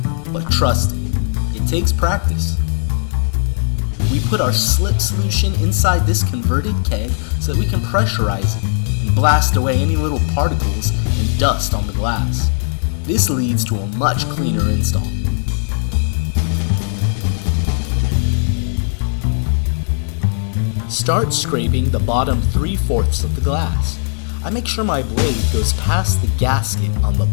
but trust me, it takes practice. We put our slip solution inside this converted keg so that we can pressurize it and blast away any little particles and dust on the glass. This leads to a much cleaner install. Start scraping the bottom 3/4 of the glass. I make sure my blade goes past the gasket on the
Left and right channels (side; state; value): right; silent; digital silence